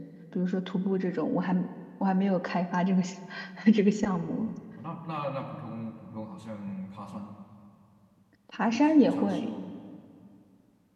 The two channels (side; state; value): both; identical; correlation 1.00